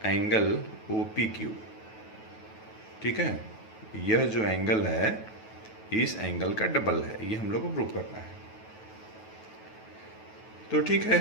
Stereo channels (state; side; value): late; right; 9.2 ms